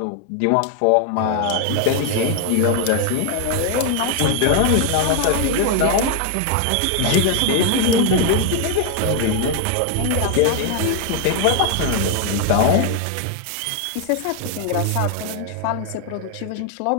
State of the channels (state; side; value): different; both; correlation 0.00